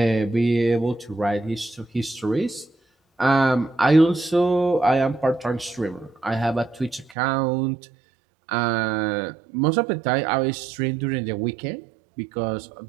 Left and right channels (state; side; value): drops out; left; at 7.2 s